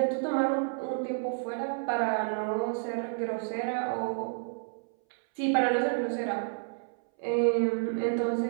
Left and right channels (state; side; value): silent; left; 58 dB below the other